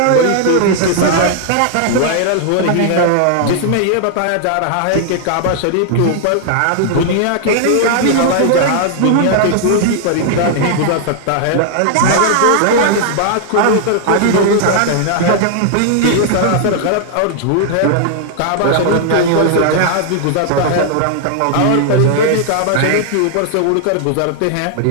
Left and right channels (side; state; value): both; different; correlation 0.00